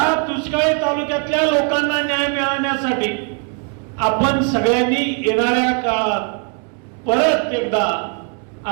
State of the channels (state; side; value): quieter; left; 39.0 dB